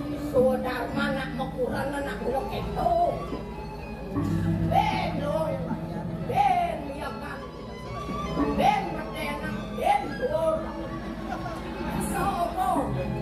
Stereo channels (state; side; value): identical; both; correlation 1.00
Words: Sudah mana mau kurang anak bulok itu. Ben loh, ben miyakan, ben berdena, ben dur. Sopo.